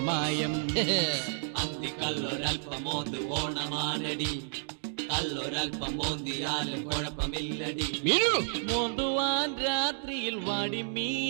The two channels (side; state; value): left; silent; digital silence